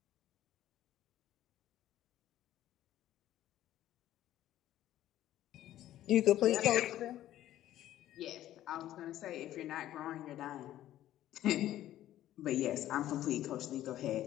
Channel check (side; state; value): right; quieter; 13.1 dB